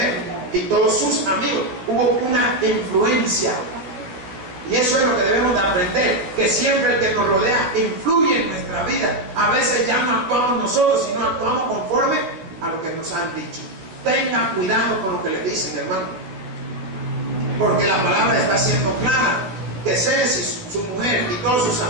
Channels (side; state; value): left; late; 16 ms